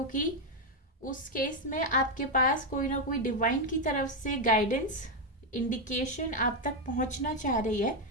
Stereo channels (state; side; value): normal; both; correlation 0.04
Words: उस केस में आपके पास कोई ना कोई डिवाइन की तरफ से गाइडेंस, इंडिकेशन आप तक पहुंचना चाह रही है,